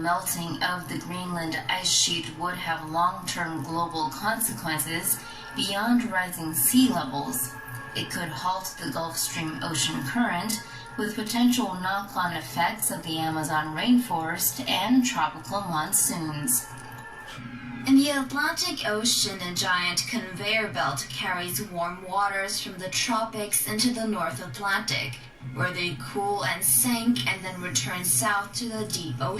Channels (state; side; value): identical; both; correlation 1.00